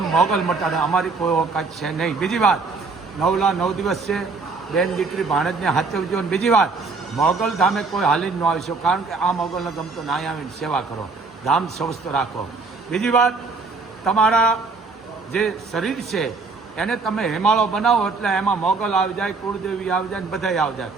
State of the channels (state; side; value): quieter; left; 4.2 dB